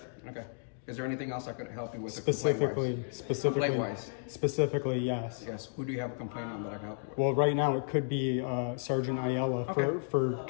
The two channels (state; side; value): silent; right; digital silence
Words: Okay. Is there anything else I could help you with? Specifically, yes. Yes. Who do you have a complaint on that I can help you with? Well, right now it could be Sergeant Ayala for